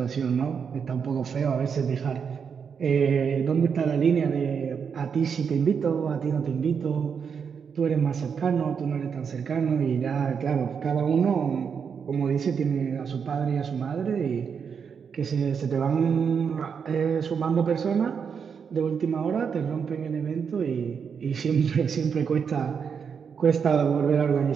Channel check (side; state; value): left; quieter; 6.6 dB